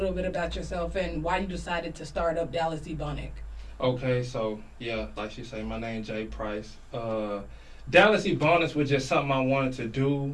bit about yourself and why you decided to start up Dallas Ebonix. Okay, so, yeah, like she said, my name Jay Price. Dallas Ebonix was just something I wanted to do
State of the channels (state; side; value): identical; both; correlation 1.00